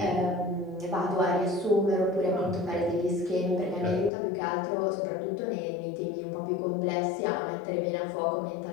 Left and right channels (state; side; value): drops out; right; at 4.1 s